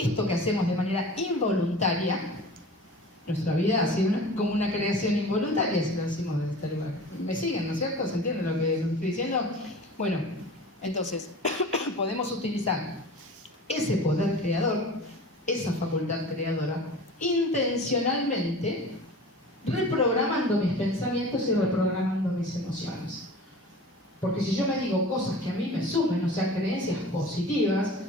que hacemos de manera involuntaria, nuestra vida ha sido como una creación involuntaria, si lo decimos desde este lugar. ¿Me siguen, no es cierto? ¿Se entiende lo que estoy diciendo? Bueno, entonces, podemos utilizar ese poder creador, esa facultad creadora, intencionalmente reprogramando mis pensamientos y reprogramando mis emociones. Porque si yo me digo cosas que a mí me sumen, o sea, creencias positivas,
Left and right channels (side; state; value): both; normal; correlation 0.39